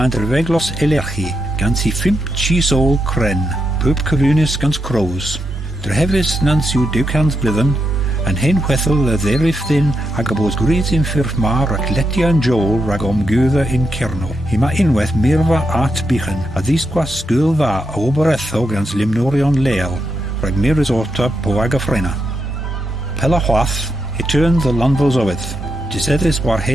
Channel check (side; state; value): both; normal; correlation 0.83